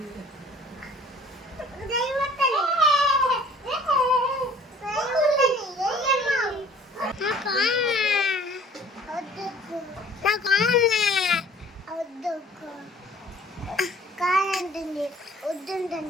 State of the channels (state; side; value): normal; both; correlation 0.52